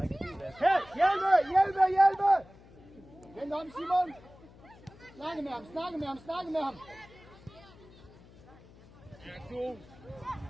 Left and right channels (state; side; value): noise; left; hum, 23 dB below the sound